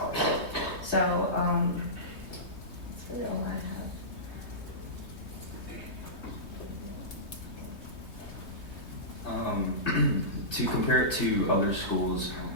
So that's really all I have. To compare it to other schools,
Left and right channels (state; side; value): late; right; 3.2 ms